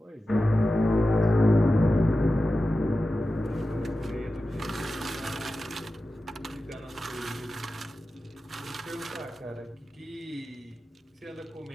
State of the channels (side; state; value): both; normal; correlation 0.93